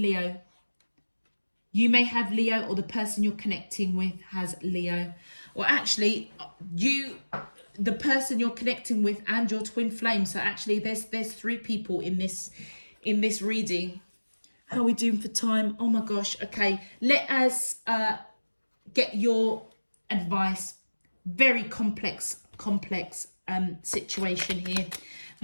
You may have Leo, or the person you're connecting with has Leo. Or actually, the person you're connecting with and your twin flame. So actually there's 3 people in this reading. How are we doing for time? Oh my gosh. Okay, let us get your advice. Very complex situation here.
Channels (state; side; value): inverted; both; correlation -1.00